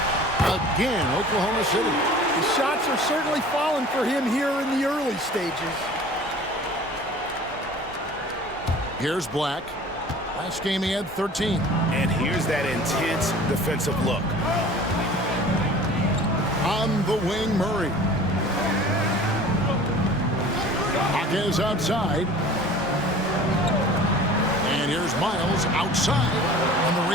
Again, Oklahoma City. The shots are certainly falling for him here in the early stages. Here's Black. Last game he had 13. And here's that intense defensive look. On the wing, Murray. Hawkins outside. And here's Miles outside. And the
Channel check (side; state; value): both; normal; correlation 0.45